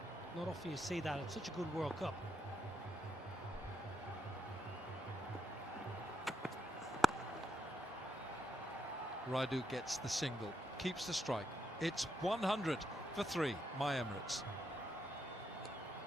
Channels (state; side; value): normal; both; correlation 0.81